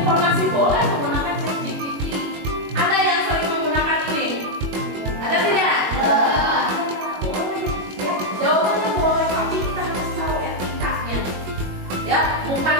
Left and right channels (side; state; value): left; late; 21 ms